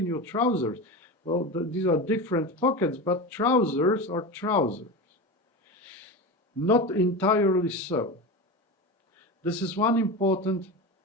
your trousers. Well, these are different pockets, but trousers are trousers. Not entirely so. This is one important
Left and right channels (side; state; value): both; normal; correlation 0.24